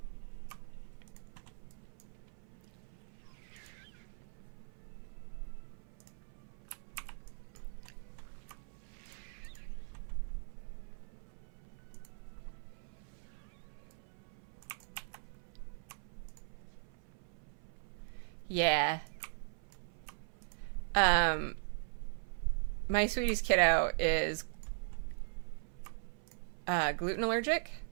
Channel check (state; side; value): silent; left; 51 dB below the other